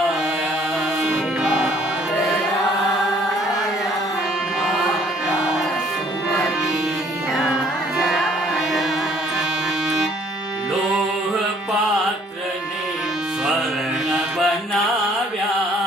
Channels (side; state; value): both; normal; correlation 0.60